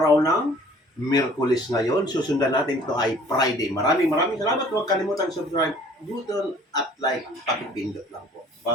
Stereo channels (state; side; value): normal; both; correlation 0.53